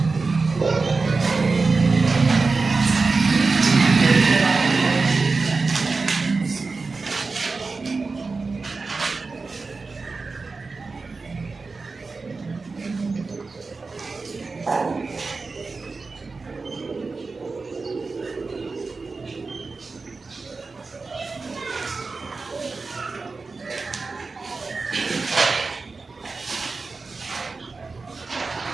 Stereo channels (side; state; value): left; quieter; 4.1 dB